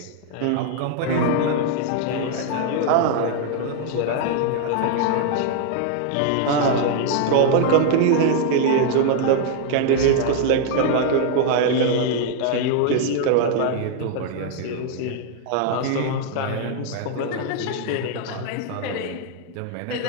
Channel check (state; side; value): different; both; correlation 0.00